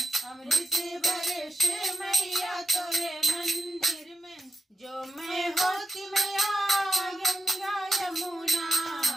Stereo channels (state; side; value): normal; both; correlation 0.89